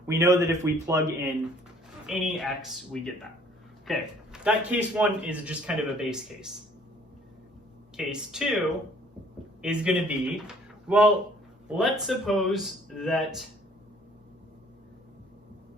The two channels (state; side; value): normal; both; correlation 0.58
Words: we know that if we plug in any x, we get that. Okay, that case 1 is just kind of a base case. Case 2 is going to be, well, let's suppose that